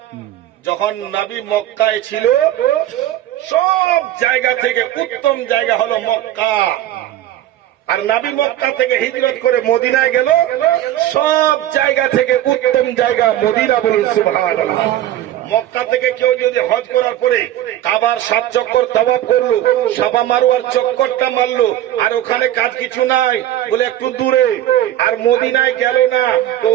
যখন নবী মক্কায় ছিল, সব জায়গা থেকে উত্তম জায়গা হলো মক্কা। আর নবী মক্কা থেকে হিজরত করে মদিনায় গেল, সব জায়গা থেকে উত্তম জায়গা মদিনা। বলুন সুবহানাল্লাহ। মক্কা থেকে কেউ যদি হজ করার পরে কাবার 7 চক্কর তাওয়াফ করলো, সাফা মারওয়ার চক্করটা মারলো, আর ওখানে কাজ কিছু নাই বলে একটু দূরে, আর মদিনায় গেল না, তো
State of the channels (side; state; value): left; quieter; 13.0 dB